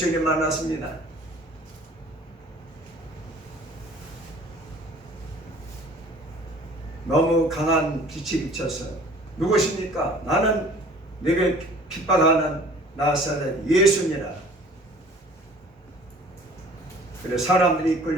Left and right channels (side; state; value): both; normal; correlation 0.50